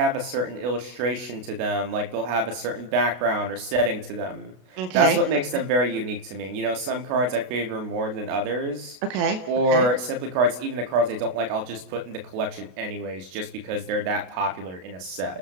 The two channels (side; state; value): left; late; 32 ms